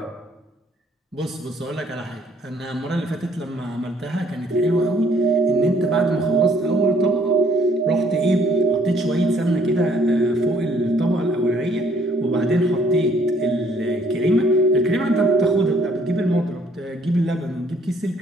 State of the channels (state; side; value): normal; both; correlation 0.63